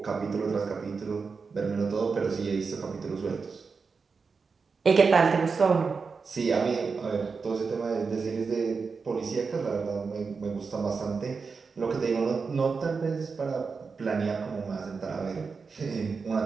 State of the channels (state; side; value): quieter; left; 5.0 dB